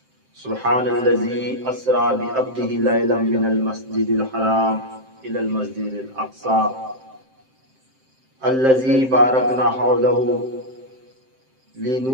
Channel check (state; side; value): late; left; 7.6 ms